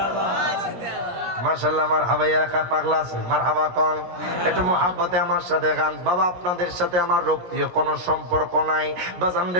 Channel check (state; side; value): late; left; 17 ms